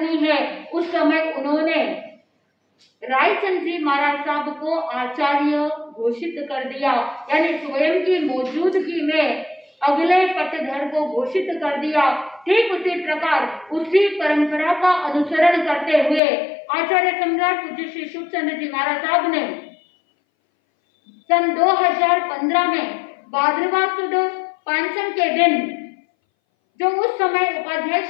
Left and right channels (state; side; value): drops out; right; at 16.2 s